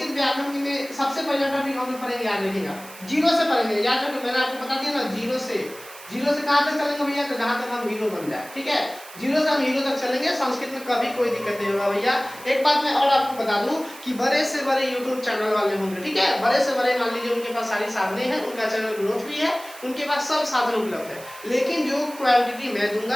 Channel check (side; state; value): right; noise; hiss, 17 dB below the sound